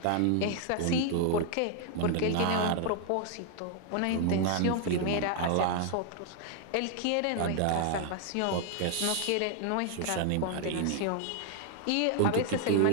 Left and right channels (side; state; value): both; different; correlation 0.00